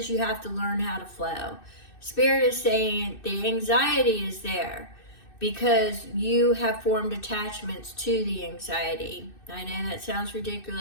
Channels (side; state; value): right; late; 2.6 ms